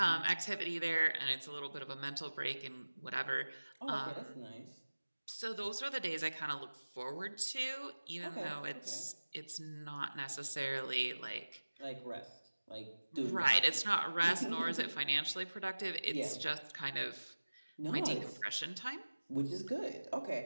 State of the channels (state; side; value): inverted; both; correlation -1.00